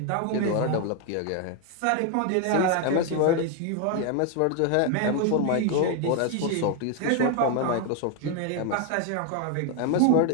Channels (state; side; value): different; both; correlation 0.01